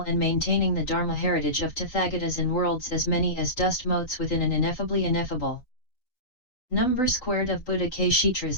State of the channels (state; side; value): late; right; 3.9 ms